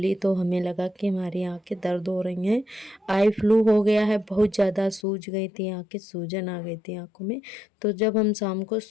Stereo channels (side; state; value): right; drops out; at 5.1 s